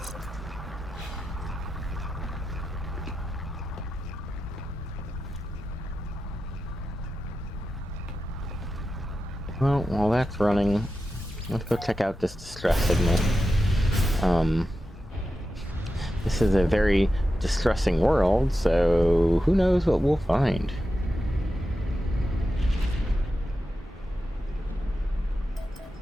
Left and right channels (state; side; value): normal; both; correlation 0.91